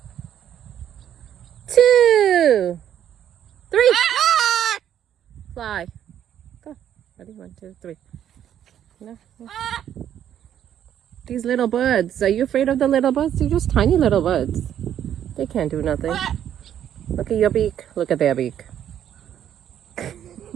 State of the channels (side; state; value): left; quieter; 10.2 dB